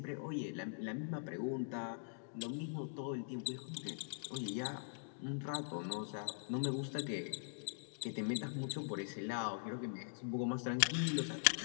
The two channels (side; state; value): right; silent; digital silence